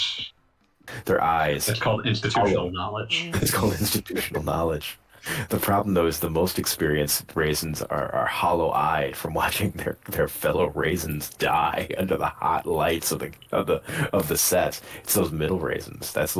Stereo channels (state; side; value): identical; both; correlation 1.00